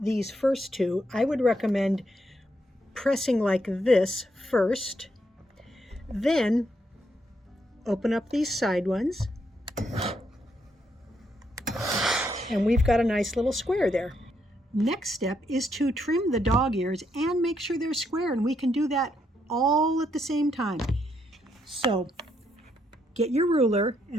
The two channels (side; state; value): both; normal; correlation 0.77